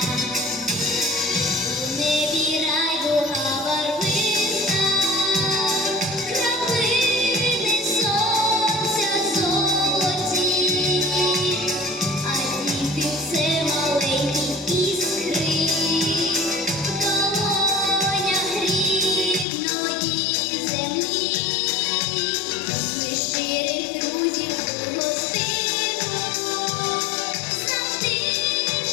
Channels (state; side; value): drops out; right; at 19.5 s